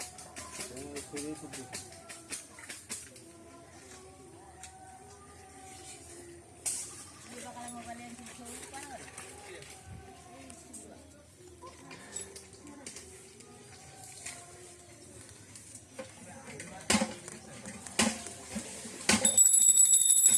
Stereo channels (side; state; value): both; identical; correlation 1.00